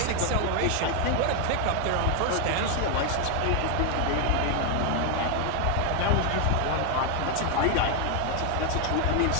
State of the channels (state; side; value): different; both; correlation 0.01